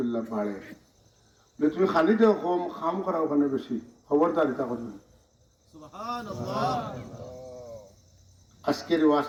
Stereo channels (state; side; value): identical; both; correlation 1.00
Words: বাড়ে, তুমি খানি দেও কম, খাম করা ওখানে বেশি, খবরদার এটা করবেন। আজকের